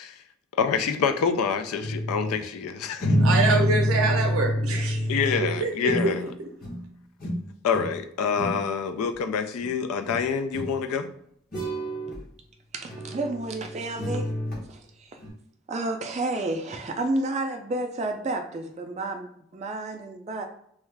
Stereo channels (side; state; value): both; normal; correlation 0.39